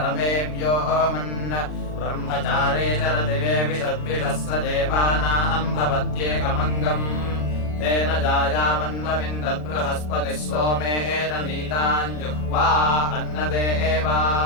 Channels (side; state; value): right; late; 39 ms